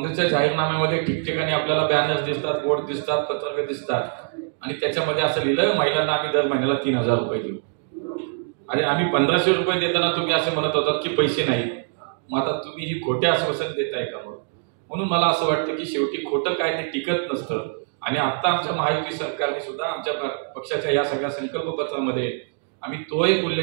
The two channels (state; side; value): silent; left; 63 dB below the other